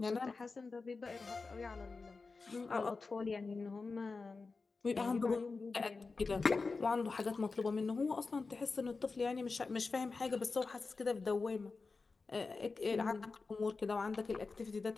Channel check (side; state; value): right; quieter; 4.2 dB